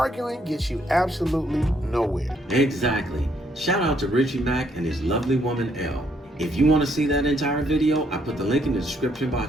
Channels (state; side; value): normal; both; correlation 0.70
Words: gets you absolutely nowhere. Exactly. Shout out to Richie Mack and his lovely woman, Elle. If you want to see that entire video, I put the link in the description